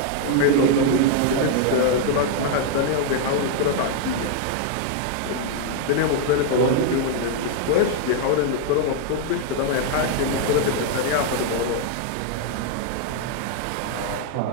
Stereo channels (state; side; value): different; both; correlation 0.00